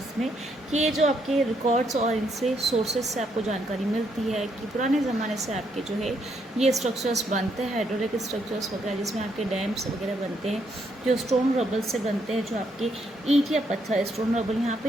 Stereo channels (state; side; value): normal; both; correlation 0.74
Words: में कि ये जो आपके रिकॉर्ड्स और इनसे सोर्सेज से आपको जानकारी मिलती है कि पुराने ज़माने से आपके जो है ये स्ट्रक्चर्स बनते हैं, हाइड्रोलिक स्ट्रक्चर्स वगैरह, जिसमें आपके डैम्स वगैरह बनते हैं जो स्टोन रबल से बनते हैं, जो आपके ईंट या पत्थर, स्टोन रबल यहाँ पे